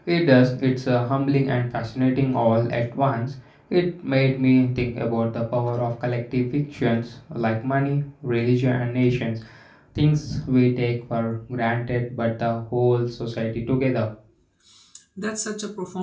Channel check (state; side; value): identical; both; correlation 1.00